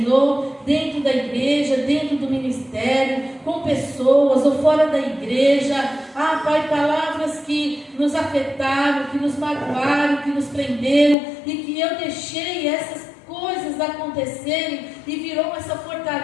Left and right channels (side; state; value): right; drops out; at 11.2 s